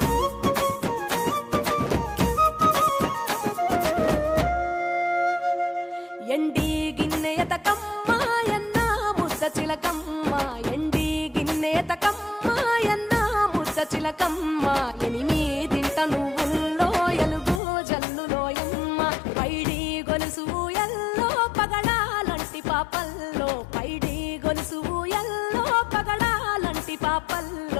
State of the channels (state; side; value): drops out; right; at 17.6 s